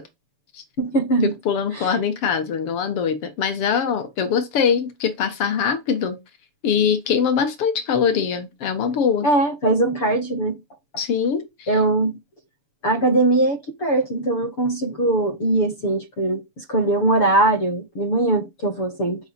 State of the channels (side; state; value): right; late; 7.0 ms